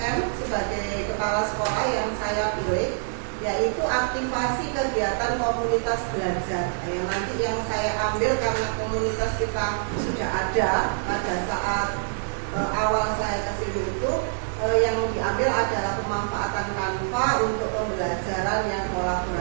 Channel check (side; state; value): left; silent; 61 dB below the other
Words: sebagai kepala sekolah yang saya pilih, yaitu aktivasi kegiatan komunitas belajar. Yang saya ambil karena komunitas kita sudah ada pada saat awal saya ke sini itu, yang diambil adalah pemanfaatan Canva untuk pembelajaran yang